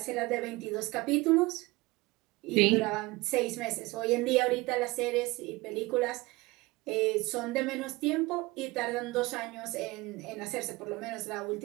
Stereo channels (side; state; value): left; quieter; 22.2 dB